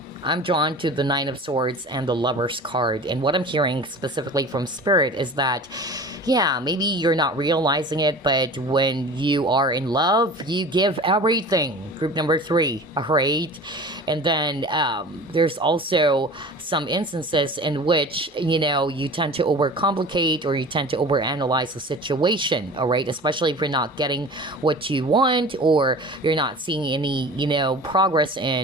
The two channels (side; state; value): both; normal; correlation 0.38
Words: I'm drawn to the 9 of Swords and the Lovers card. And what I'm hearing specifically from Spirit is that, yeah, maybe you're not realizing it, but when you are in love, you give everything. Group number 3, all right? And then there's also some instances in which, you tend to overcomplicate or you tend to overanalyze the situation, all right? Especially if you're not getting what you want or you're not seeing any, progress